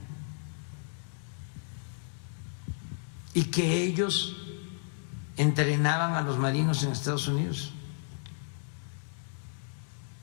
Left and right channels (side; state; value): right; silent; digital silence